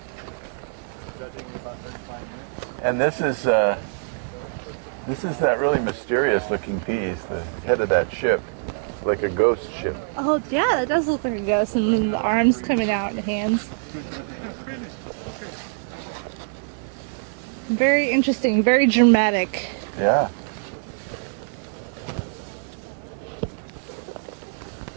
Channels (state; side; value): silent; left; digital silence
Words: And this is that really mysterious looking piece, the head of that ship, like a ghost ship. Oh, yeah, that does look like a ghost, and then the arms coming out and the hands. Very interesting, very dramatic. Yeah.